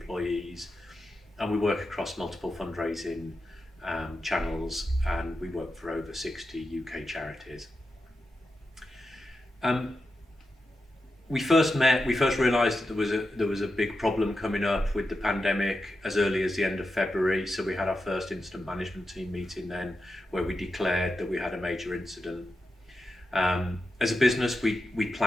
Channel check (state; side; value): normal; both; correlation 0.89